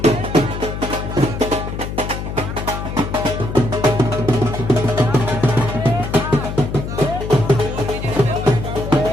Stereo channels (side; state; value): left; noise; hum, 6 dB below the sound